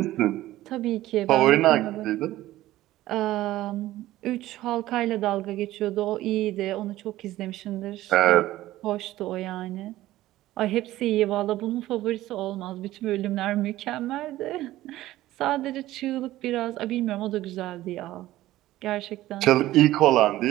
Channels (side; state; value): left; quieter; 15.5 dB